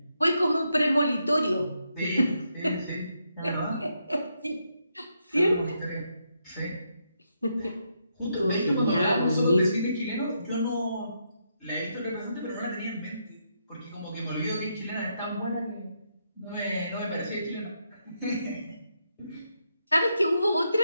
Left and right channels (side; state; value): both; inverted; correlation -0.80